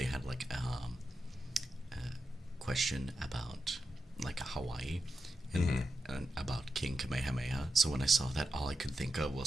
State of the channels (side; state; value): both; normal; correlation 0.88